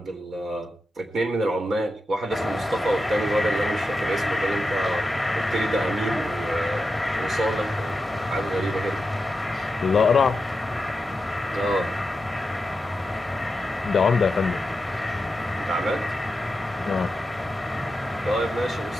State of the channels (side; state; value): both; normal; correlation 0.89